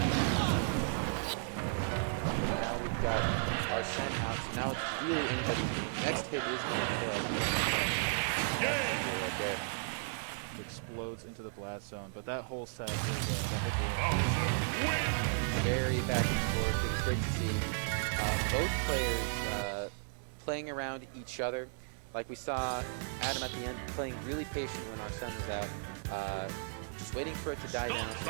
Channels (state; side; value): silent; left; digital silence